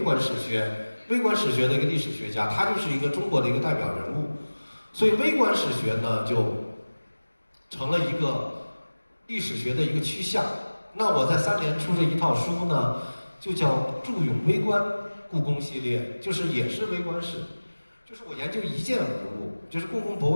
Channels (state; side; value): inverted; both; correlation -1.00